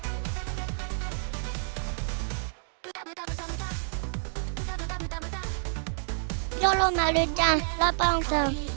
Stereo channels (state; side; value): silent; left; digital silence